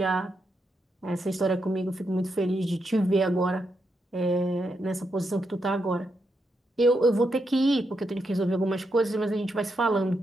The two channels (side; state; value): both; normal; correlation 0.82